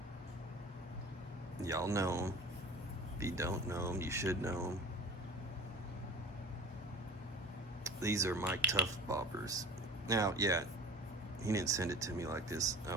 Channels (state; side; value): normal; both; correlation 0.39